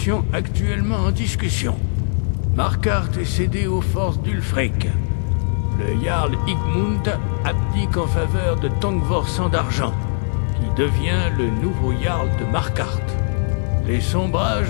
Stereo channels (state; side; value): silent; right; digital silence